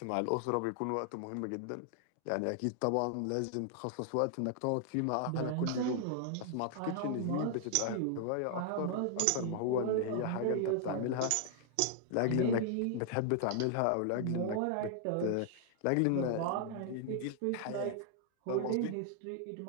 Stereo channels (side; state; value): both; different; correlation 0.00